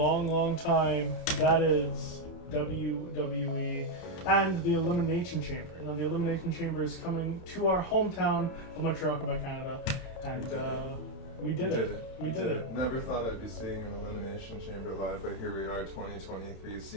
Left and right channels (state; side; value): late; right; 31 ms